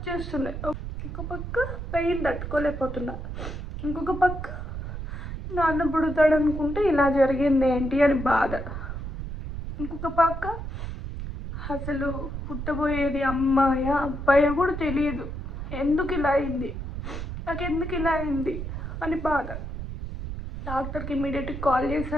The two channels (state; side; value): noise; right; rumble, 6 dB below the sound